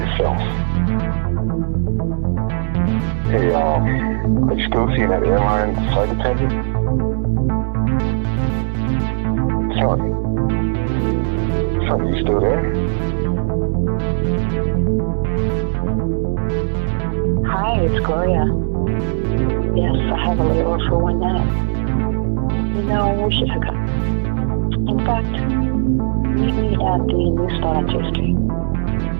Hey, are you still seeing that airline flight attendant? Son, Are you still there? Hi, it's Gloria. Yes, I have a layover for 1 minute. You know, we should hook up. In fact, meet me at the new spot on J Street.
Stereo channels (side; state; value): left; silent; 67 dB below the other